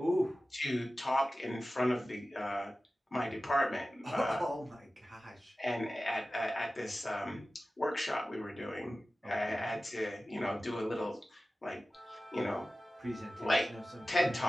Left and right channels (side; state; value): both; normal; correlation 0.95